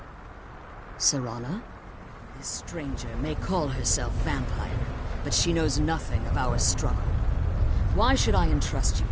Serana? This stranger may call herself vampire, but she knows nothing of our struggle. Why should I entrust you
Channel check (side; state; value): both; identical; correlation 1.00